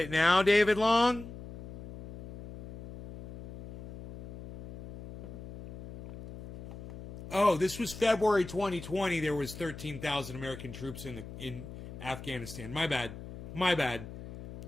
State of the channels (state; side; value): noise; left; hum, 12 dB below the sound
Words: now, David Long? Oh, this was February 2020. There was 13,000 American troops in Afghanistan. My bad. My bad.